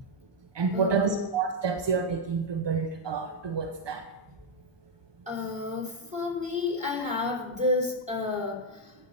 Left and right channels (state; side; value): normal; both; correlation 0.00